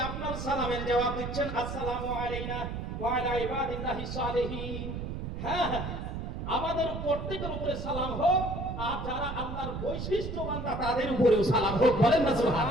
আপনার সালামের জবাব দিচ্ছেন আসসালামু আলাইনা ওয়া আলা ইবাদিল্লাহি সালিহিন। হ্যাঁ হ্যাঁ, আমাদের প্রত্যেকের উপরে সালাম হোক, আর যারা আল্লাহর বৈশিষ্ট্যবান তাদের উপরেও সালাম হোক, বলেন না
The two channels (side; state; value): right; noise; rumble, 5 dB below the sound